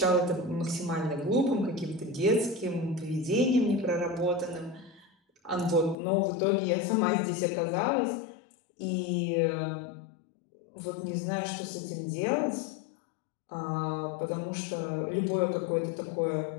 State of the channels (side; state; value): right; drops out; at 6.0 s